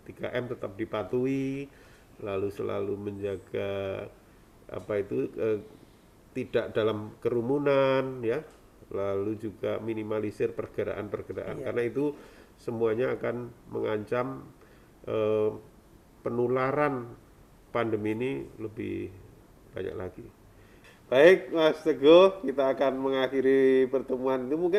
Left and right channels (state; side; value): identical; both; correlation 1.00